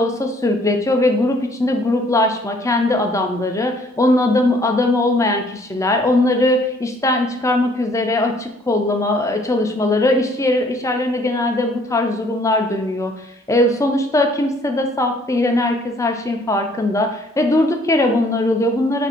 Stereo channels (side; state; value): both; normal; correlation 0.61